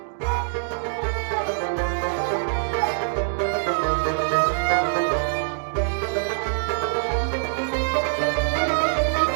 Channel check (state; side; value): silent; left; digital silence